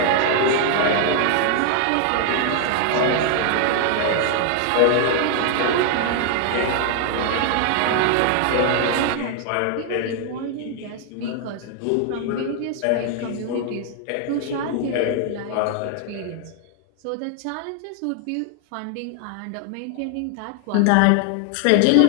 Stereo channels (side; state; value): both; different; correlation 0.00